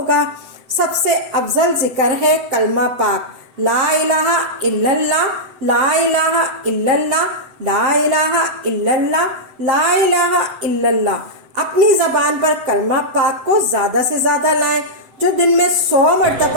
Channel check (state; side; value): late; left; 7.8 ms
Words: سب سے افضل ذکر ہے کلمہ پاک، لا الہ الا اللہ، لا الہ الا اللہ، لا الہ الا اللہ، لا الہ الا اللہ۔ اپنی زبان پر کلمہ پاک کو زیادہ سے زیادہ لائیں۔ جو دن میں 100